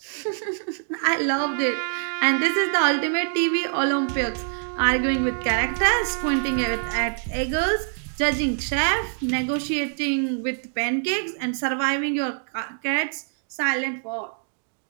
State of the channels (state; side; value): silent; left; digital silence